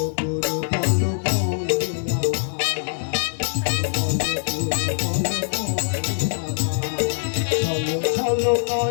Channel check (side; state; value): right; silent; 59 dB below the other